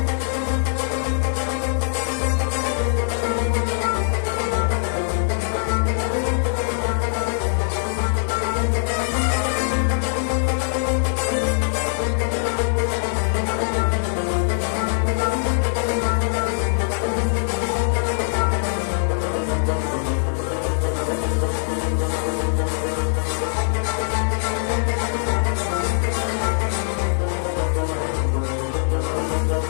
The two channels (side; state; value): right; silent; digital silence